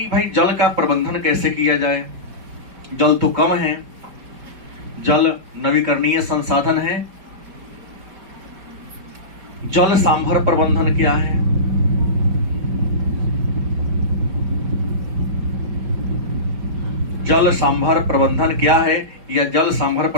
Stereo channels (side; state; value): left; late; 4.7 ms